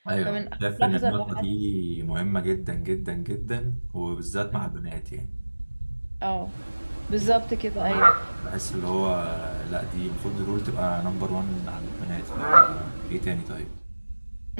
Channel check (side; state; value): both; inverted; correlation -1.00